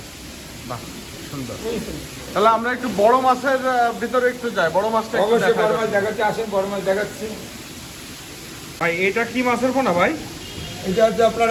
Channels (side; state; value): both; identical; correlation 1.00